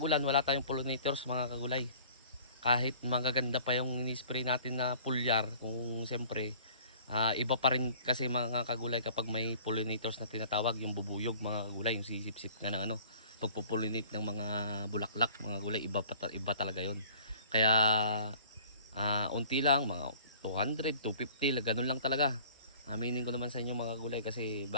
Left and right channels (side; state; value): both; inverted; correlation -0.49